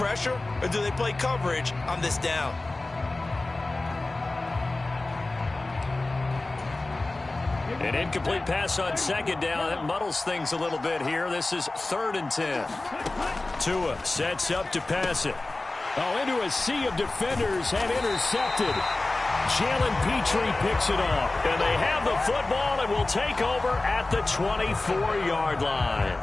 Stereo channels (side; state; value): right; quieter; 3.0 dB